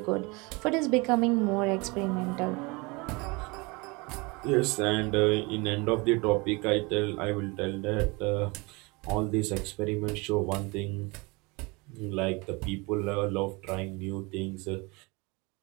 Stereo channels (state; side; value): quieter; left; 26.7 dB